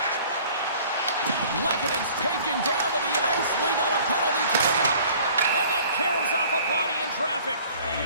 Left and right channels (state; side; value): inverted; both; correlation -0.51